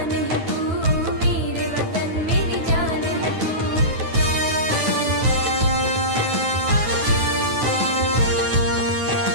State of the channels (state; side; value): late; left; 9.2 ms